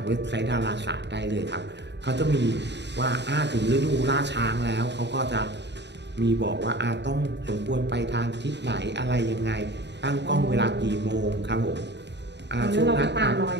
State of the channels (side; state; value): left; late; 0.51 ms